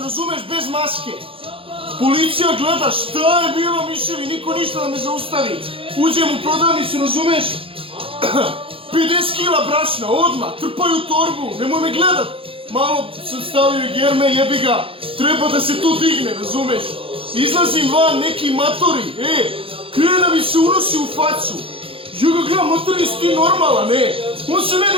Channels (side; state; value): left; late; 0.27 ms